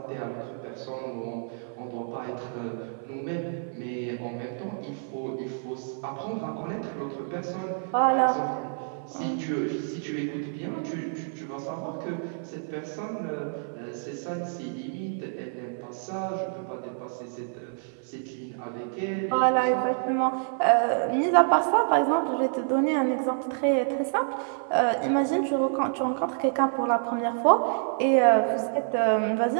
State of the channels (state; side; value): silent; left; 57 dB below the other